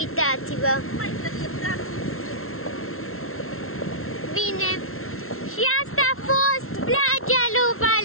Mai trebuie dat Bine. Și asta a fost plajea lui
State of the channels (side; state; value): right; late; 0.62 ms